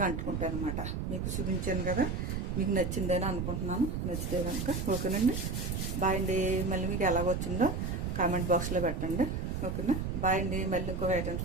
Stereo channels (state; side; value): noise; right; rumble, 2 dB below the sound